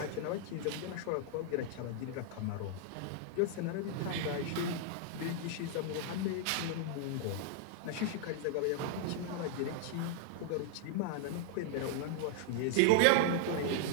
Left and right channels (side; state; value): both; different; correlation 0.00